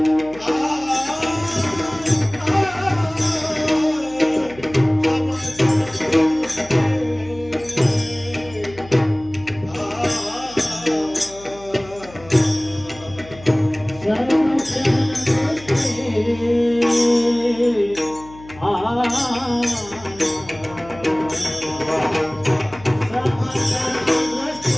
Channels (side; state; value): left; noise; hum, 20 dB below the sound